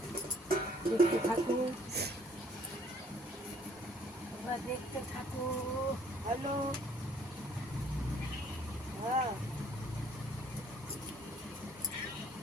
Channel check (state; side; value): normal; both; correlation 0.60